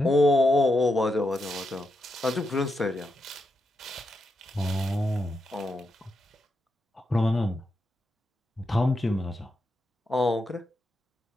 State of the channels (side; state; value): both; normal; correlation 0.85